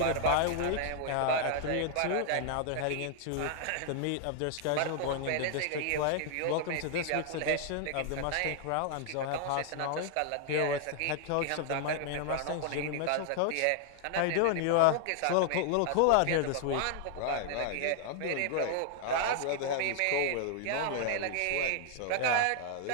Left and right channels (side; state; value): both; different; correlation 0.00